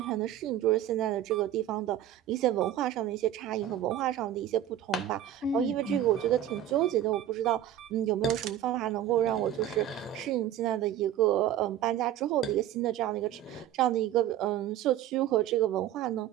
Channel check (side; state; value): left; quieter; 11.5 dB